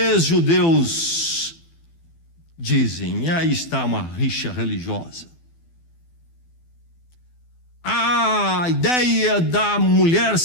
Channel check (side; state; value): right; late; 12 ms